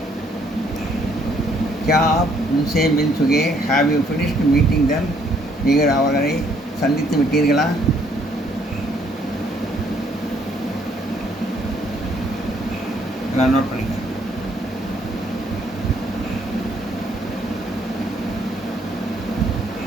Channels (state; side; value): normal; both; correlation 0.66